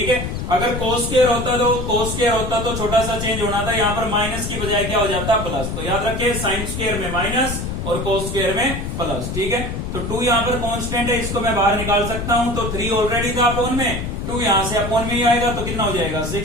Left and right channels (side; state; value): left; noise; rumble, 4 dB below the sound